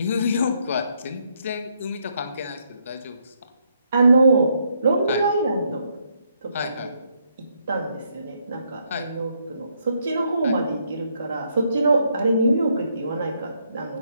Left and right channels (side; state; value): both; inverted; correlation -0.74